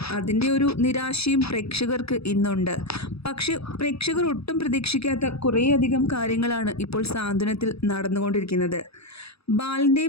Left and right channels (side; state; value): right; late; 0.78 ms